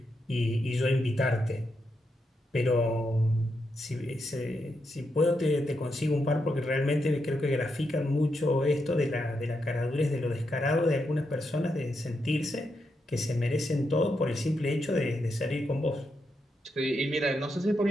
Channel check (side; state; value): both; normal; correlation 0.83